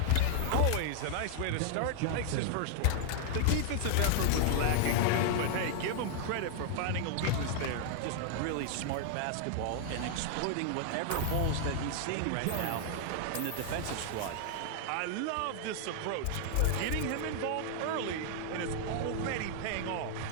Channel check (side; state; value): both; different; correlation 0.00